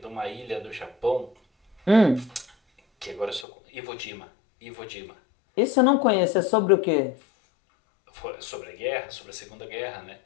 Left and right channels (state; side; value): drops out; right; at 3.5 s